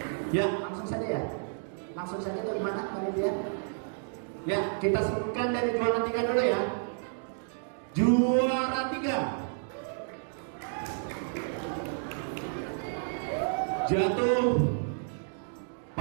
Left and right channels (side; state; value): left; silent; digital silence